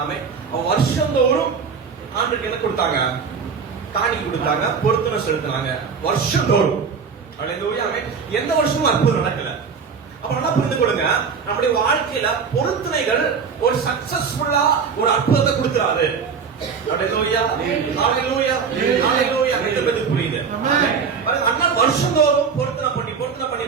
ஆமென். வருஷந்தோறும் ஆண்டுக்கு என்ன கொடுத்தாங்க? காணி கொடுத்தாங்க, பொருத்தனை செலுத்தினாங்க வருஷந்தோறும். ஹalleluya. ஆமென். எந்த வருஷமும் அற்புதம் நடக்கல. அப்ப நல்லா புரிந்து கொள்ளுங்க, நம்முடைய வாழ்க்கையில பொருத்தனைகள் ஒரு சக்சஸ்ஃபுல்லா ஒரு அற்புதத்தை கொடுக்கிறாரு. ஹalleluya. ஹalleluya. ஹalleluya. இது புரியுது. அண்ணா வருஷந்தோறும் பொருத்தனை பண்ணி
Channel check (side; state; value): left; quieter; 5.9 dB